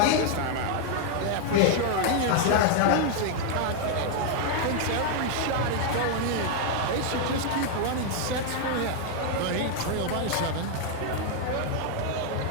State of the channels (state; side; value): different; both; correlation 0.00